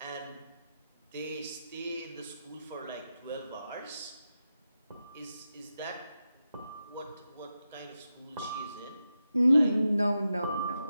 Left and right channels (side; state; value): both; inverted; correlation -0.89